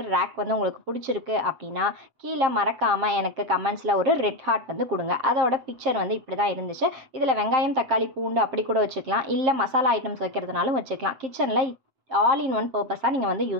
ரேக் வந்து உங்களுக்கு பிடிச்சிருக்கு அப்படின்னா கீழே மறக்காமல் எனக்கு கமெண்ட்ஸில் ஒரு ரெட் ஹார்ட் வந்து கொடுங்க. அதோட பிக்சர் வந்து இப்படி தான் இருந்துச்சு. இதில் வெங்காயம், தக்காளி, பூண்டு அப்படி கூட வச்சுக்கலாம். இல்லை மசாலா ஐட்டம்ஸ் வைக்கிறதுனாலும் வச்சுக்கலாம். கிச்சனில் ஆல் இன் ஒன் பர்பஸாக நீங்கள் வந்து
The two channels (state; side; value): late; left; 7.5 ms